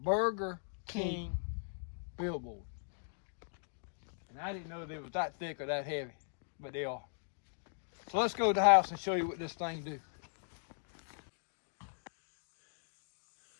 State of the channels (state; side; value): silent; right; digital silence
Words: King billboard. And I didn't know they was that thick or that heavy, but they are. So let's go to the house and show you what this thing do.